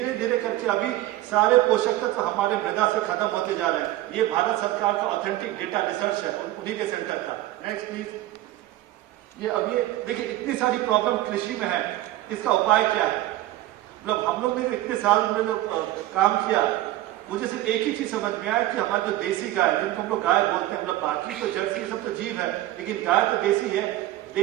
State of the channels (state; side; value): quieter; left; 15.6 dB